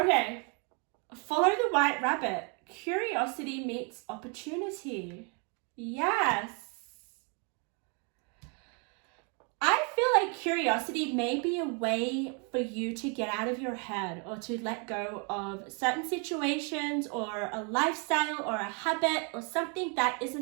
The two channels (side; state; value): left; quieter; 36.0 dB